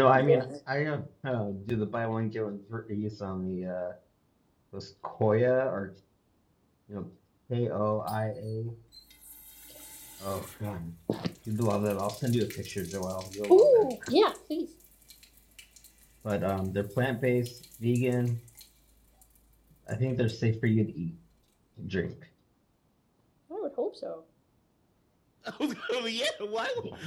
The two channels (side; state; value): both; identical; correlation 1.00